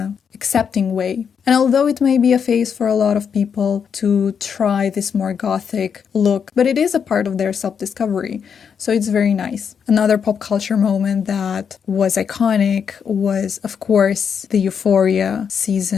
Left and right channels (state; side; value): quieter; right; 7.0 dB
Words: accepting way. And although it may be a phase for a lot of people to try this more gothic look, but it is a part of their self-discovery. So it's very nice. Another pop culture moment that was iconic was, of course, the Euphoria